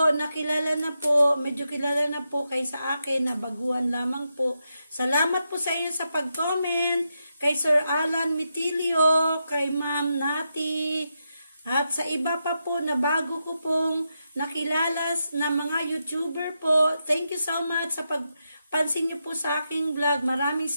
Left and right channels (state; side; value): inverted; both; correlation -0.85